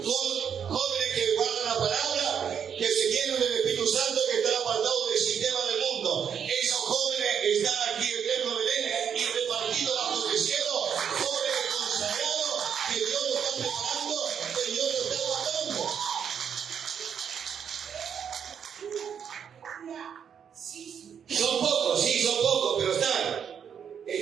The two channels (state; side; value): quieter; left; 7.8 dB